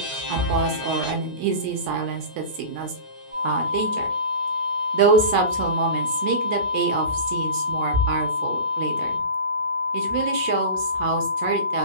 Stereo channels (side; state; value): left; late; 9.5 ms